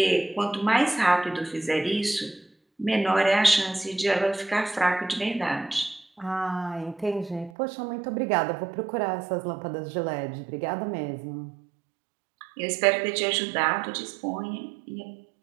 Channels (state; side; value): drops out; left; at 7.5 s